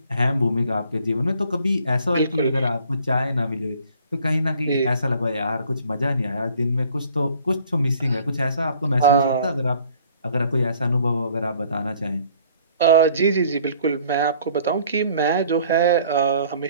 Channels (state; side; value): inverted; both; correlation -0.56